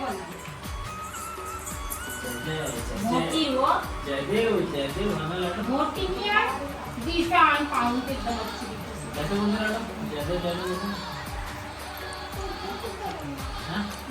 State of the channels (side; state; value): both; identical; correlation 1.00